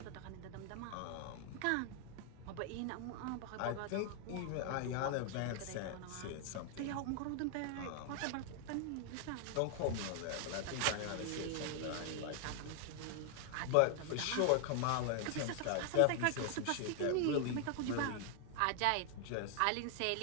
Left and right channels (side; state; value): both; different; correlation 0.00